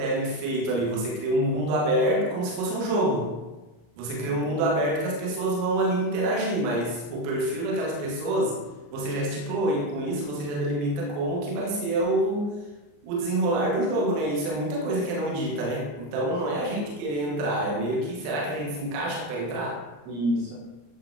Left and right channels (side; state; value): left; late; 34 ms